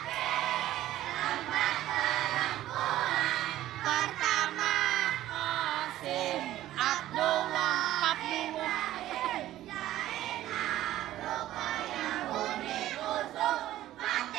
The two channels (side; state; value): left; quieter; 14.1 dB